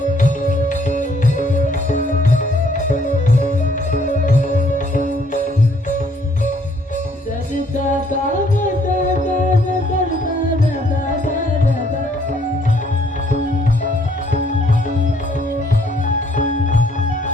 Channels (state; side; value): normal; both; correlation 0.65